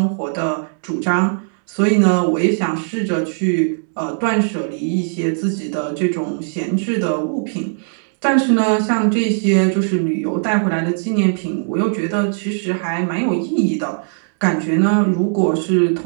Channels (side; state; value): left; silent; digital silence